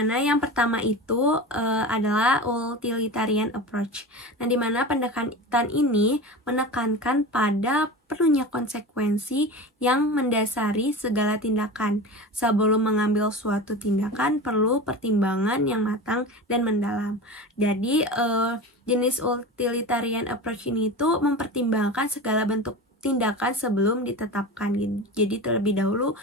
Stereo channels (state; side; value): normal; both; correlation 0.30